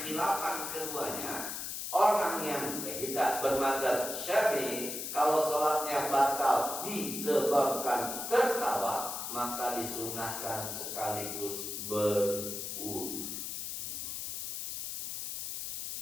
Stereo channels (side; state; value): left; noise; hiss, 5 dB below the sound